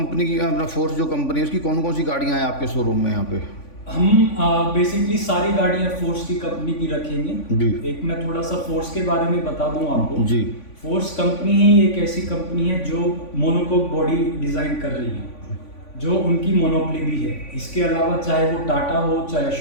की, अपना फोर्स जो कंपनी है उसकी कौन कौन सी गाड़ियाँ हैं आपके शोरूम में यहाँ पे? हम बेसिकली सारी गाड़ियाँ फोर्स की कंपनी की रखेंगे जी। एक मैं थोड़ा सा फोर्स के बारे में बता दूं आपको जी। फोर्स कंपनी ही एक ऐसी कंपनी है जो मोनोकोक बॉडी डिज़ाइन कर रही है, जो उनकी मोनोपली भी है। इसके अलावा चाहे वो टाटा हो, चाहे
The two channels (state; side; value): late; right; 3.5 ms